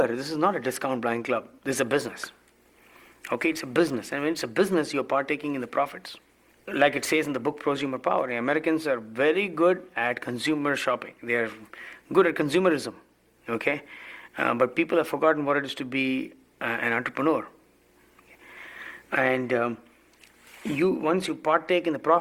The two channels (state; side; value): identical; both; correlation 1.00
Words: this is not a discount blind club. This is a business. Okay, it's a business, and when it's a business, you're partaking in the profits. Like it says in the book Prosumer Power, the Americans are very good at consumer shopping. They are good at consumerism. Okay. But people have forgotten what it is to be an entrepreneur. And once you partake in the